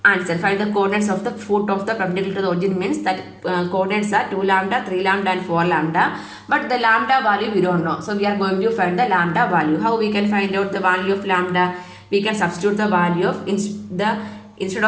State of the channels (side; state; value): both; identical; correlation 1.00